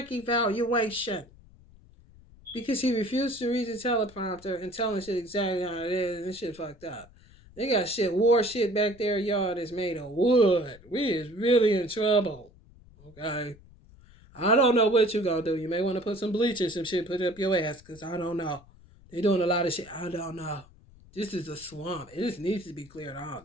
Because he refused to read the teleprompter and telling shit exactly how it is, and this shit fucked up. They got war shit back there, y'all, that's made of wood. We is really in trouble. Okay? I don't know what you gonna do. You may want to put some bleach or some shit, put it up your ass, because I don't know. They doing a lot of shit. I don't know. This is a swamp. It just needs to be cleared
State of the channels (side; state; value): left; noise; rumble, 24 dB below the sound